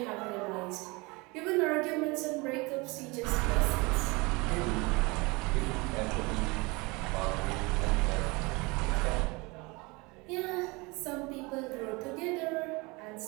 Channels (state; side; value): quieter; left; 25.9 dB